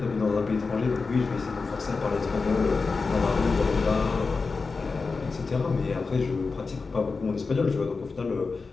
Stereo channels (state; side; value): quieter; right; 4.4 dB